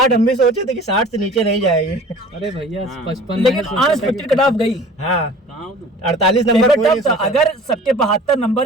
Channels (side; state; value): both; normal; correlation 0.45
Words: हम भी सोचे थे कि 60 से नीचे नहीं जाएगी। अरे भैया 55, लेकिन अनएक्सपेक्टेड कट ऑफ गई। हाँ, 48 नंबर था। अगर सबके 72 नंबर